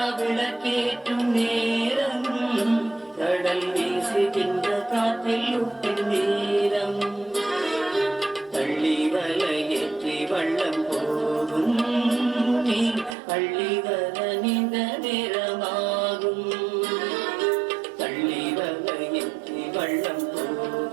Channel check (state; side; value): drops out; left; at 13.2 s